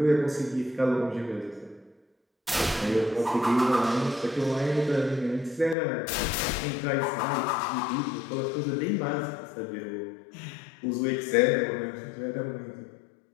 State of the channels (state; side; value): drops out; right; at 5.8 s